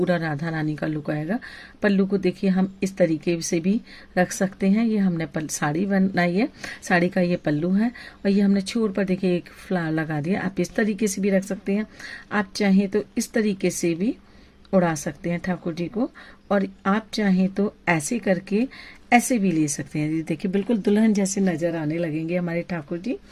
राधा रानी का लुक आएगा। पल्लू को देखिए हम इस तरीके से भी रख सकते हैं। ये हमने साड़ी बनाई है, साड़ी का ये पल्लू है। और ये हमने छोर पर देखिए एक फ्लावर लगा दिया। आप इस तरीके से भी रख सकते हैं, आप चाहें तो इस तरीके से भी उड़ा सकते हैं ठाकुर जी को। और आप चाहें तो ऐसे करके ऐसे भी ले सकते हैं। देखिए बिल्कुल दुल्हन जैसे नजर आने लगेंगे हमारे ठाकुर जी।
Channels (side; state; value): both; identical; correlation 1.00